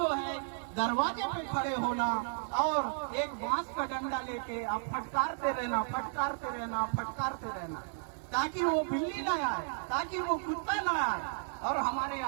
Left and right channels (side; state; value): left; silent; digital silence